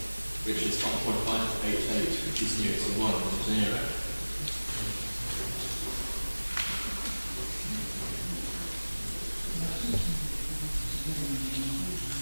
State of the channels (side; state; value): both; inverted; correlation -1.00